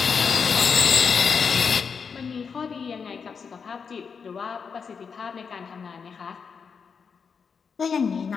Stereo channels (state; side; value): quieter; right; 6.0 dB